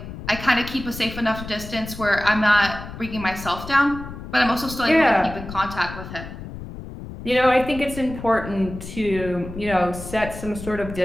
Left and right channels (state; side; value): noise; left; rumble, 11 dB below the sound